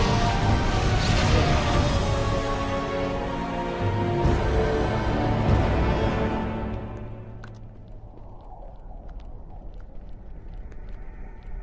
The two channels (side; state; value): both; identical; correlation 1.00